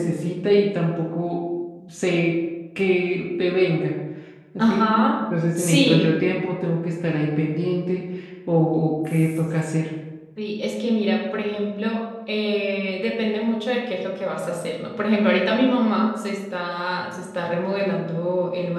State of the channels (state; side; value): identical; both; correlation 1.00